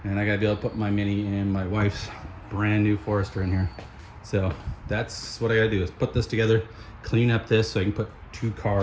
And I gotta be able to put my Mini and my wife's brand new Forester in here. So that's what I gotta do, is put this together, clean up this so I can put 2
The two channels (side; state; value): both; identical; correlation 1.00